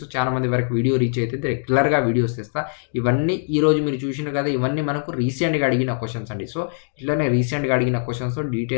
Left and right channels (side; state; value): right; silent; digital silence